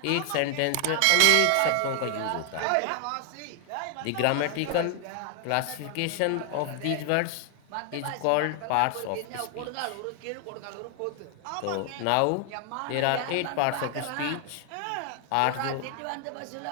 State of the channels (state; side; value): different; both; correlation 0.00